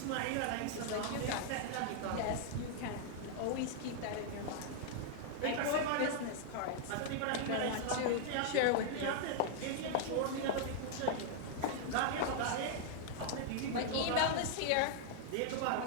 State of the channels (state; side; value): different; both; correlation -0.01